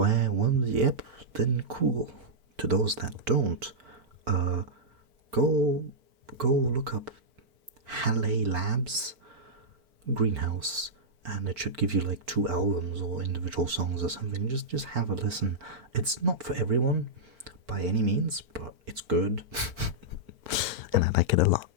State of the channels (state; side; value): late; left; 4.4 ms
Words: when, yep, then cool. To those that don't, go look up Haley Labs Greenhouse and it should give you like 2 albums or individual songs or something. Just have a listen. It's not for everyone by any means, but it's good. And I like it a lot.